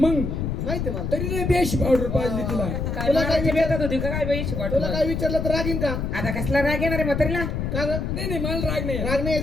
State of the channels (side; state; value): left; noise; rumble, 2 dB below the sound